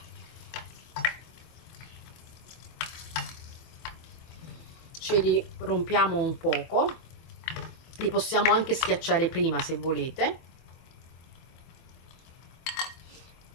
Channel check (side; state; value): right; late; 24 ms